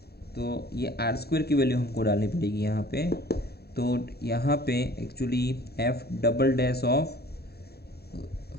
तो ये आर स्क्वायर की वैल्यू हमको डालनी पड़ेगी यहाँ पे। तो यहाँ पे actually F double dash of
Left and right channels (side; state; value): right; late; 0.46 ms